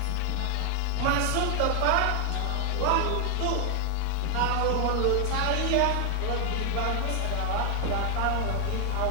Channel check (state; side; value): different; both; correlation 0.00